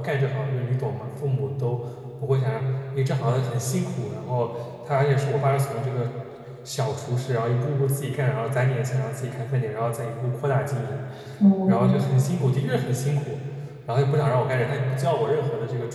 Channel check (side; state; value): both; identical; correlation 1.00